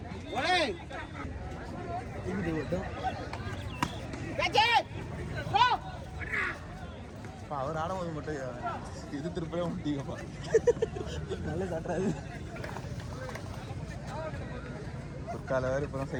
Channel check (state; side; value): identical; both; correlation 1.00